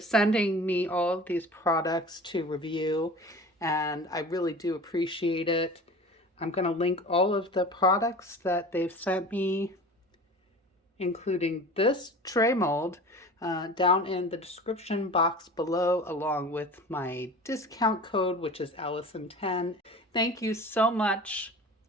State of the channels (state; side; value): normal; both; correlation 0.38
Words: me all of these products to review, and I really do appreciate it. I'm going to link all of the products that they've sent me, including this tray mold, down in the description box below, along with my discount code, which is Allison10. Thank you so much